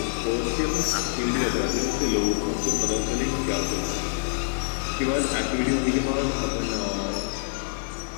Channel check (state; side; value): silent; right; digital silence